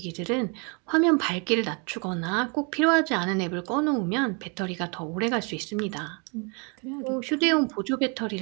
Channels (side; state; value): left; quieter; 34.1 dB